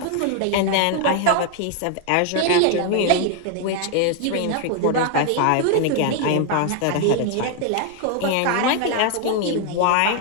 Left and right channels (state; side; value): different; both; correlation 0.00